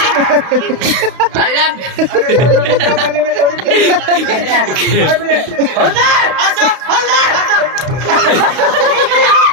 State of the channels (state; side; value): late; left; 32 ms